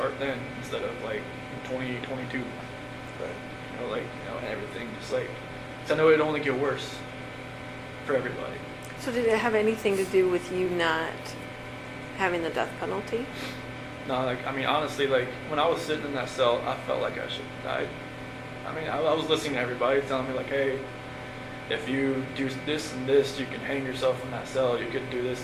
then instead of like in 2022. Right. You know, like, you know, and everything just like, 'cause I know it'd only get worse for everybody. So did it have anything to do with you not having the death penalty? No, like, I mean, honestly, like, when I was sitting in that cell, I felt like I should have died. I mean, I was listening to everybody telling me, like, hey, if you do this and this, you can hang yourself in that cell. You could do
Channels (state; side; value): identical; both; correlation 1.00